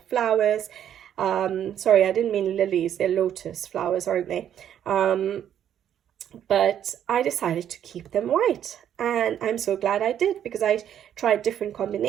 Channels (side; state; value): left; quieter; 10.0 dB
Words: flowers. Sorry, I didn't mean lilies. They're lotus flowers, aren't they? But I decided to keep them white, and I'm so glad I did, because I tried different